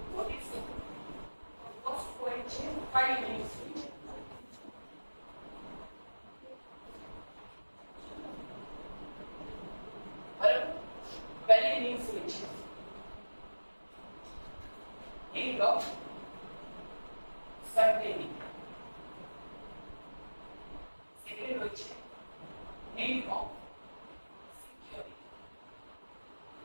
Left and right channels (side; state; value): both; inverted; correlation -1.00